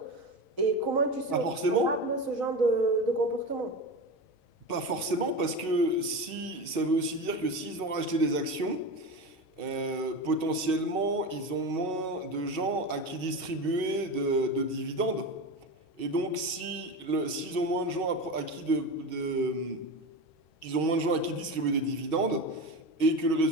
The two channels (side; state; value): right; late; 6.3 ms